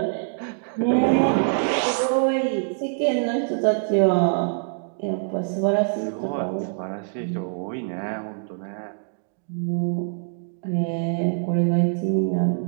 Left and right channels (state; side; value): silent; left; digital silence